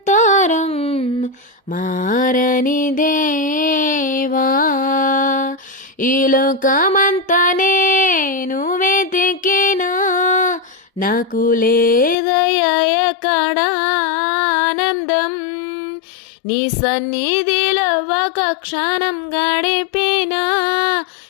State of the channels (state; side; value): drops out; right; at 12.2 s